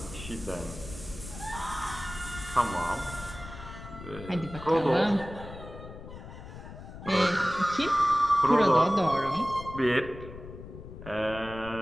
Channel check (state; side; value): noise; left; rumble, 13 dB below the sound